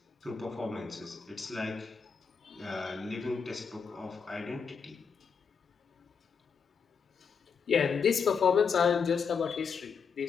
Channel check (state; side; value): quieter; right; 5.9 dB